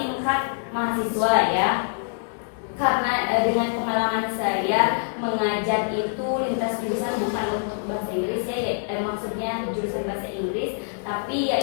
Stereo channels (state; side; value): silent; right; digital silence